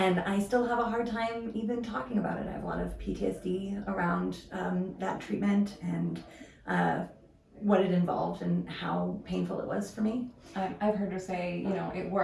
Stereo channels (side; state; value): both; identical; correlation 1.00